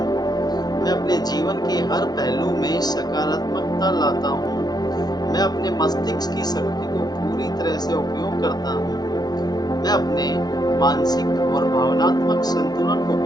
मैं अपने जीवन के हर पहलू में सकारात्मकता लाता हूँ। मैं अपने मस्तिष्क की शक्ति को पूरी तरह से उपयोग करता हूँ। मैं अपने मानसिक और भावनात्मक संतुलन को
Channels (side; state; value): right; late; 0.19 ms